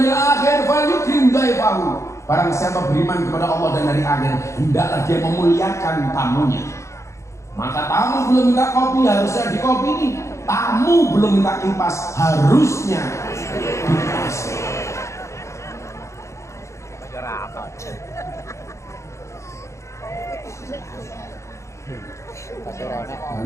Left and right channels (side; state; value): right; late; 0.14 ms